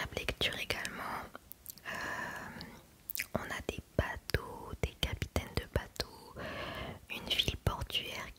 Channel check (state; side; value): identical; both; correlation 1.00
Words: lecture également. On a des bateaux, des capitaines de bateaux, une ville portuaire